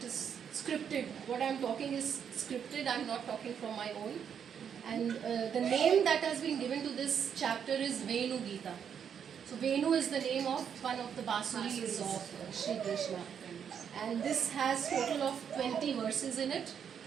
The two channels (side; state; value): left; quieter; 7.9 dB